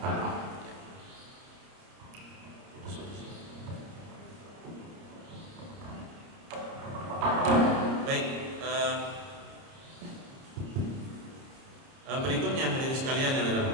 aurat. Baik, berikutnya hadirin sekalian yang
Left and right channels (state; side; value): late; left; 29 ms